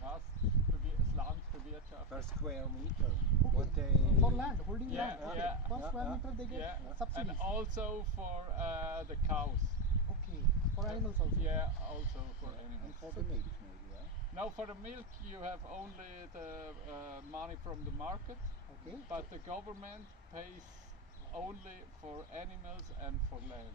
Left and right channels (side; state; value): both; normal; correlation 0.10